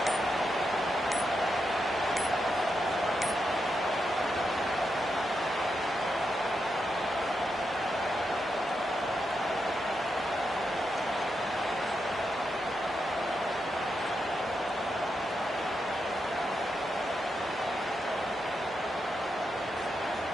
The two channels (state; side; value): normal; both; correlation 0.85